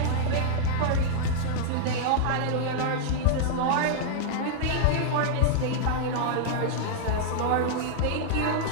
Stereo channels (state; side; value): different; both; correlation -0.01